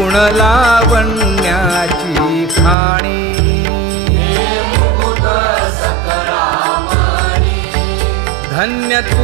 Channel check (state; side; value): drops out; left; at 2.8 s